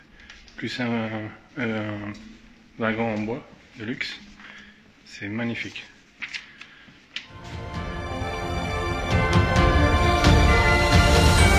plus un wagon en bois de luxe. C'est magnifique.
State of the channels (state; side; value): identical; both; correlation 1.00